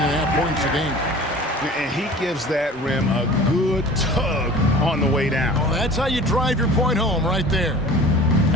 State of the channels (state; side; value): normal; both; correlation 0.42